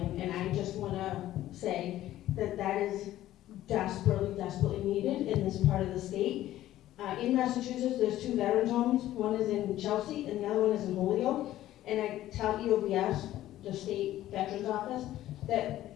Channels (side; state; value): right; quieter; 14.0 dB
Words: and I just want to say that that is desperately, desperately needed in this part of the state. In Massachusetts, there's 2 veterans homes. One is in Chelsea, and the other one is in Holyoke. And I tell EOVS, the state veterans office,